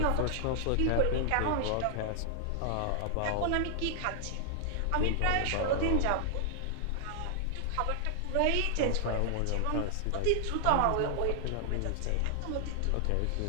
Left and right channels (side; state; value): both; different; correlation -0.01